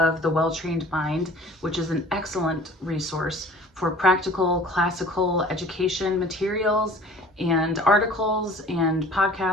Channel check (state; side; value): normal; both; correlation 0.48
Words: the Well-Trained Mind, which is an excellent resource for practical classical education materials and articles and